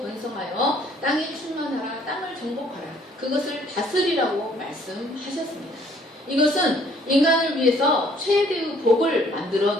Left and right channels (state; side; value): normal; both; correlation 0.61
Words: 땅에 충만하라, 땅을 정복하라, 그것을 다스리라고 말씀하셨습니다. 이것은 인간을 위해서 최대의 복을 만들어